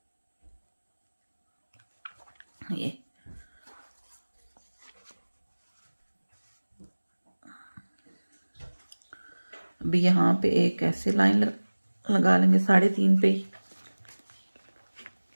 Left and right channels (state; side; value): inverted; both; correlation -1.00